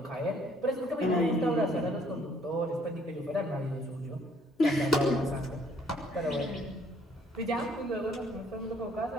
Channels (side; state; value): both; normal; correlation 0.62